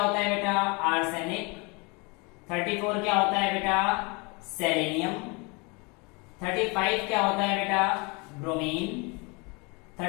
है बेटा? आर्सेनिक। 34 क्या होता है बेटा? सेलेनियम। 35 क्या होता है बेटा? ब्रोमीन।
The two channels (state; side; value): quieter; right; 29.2 dB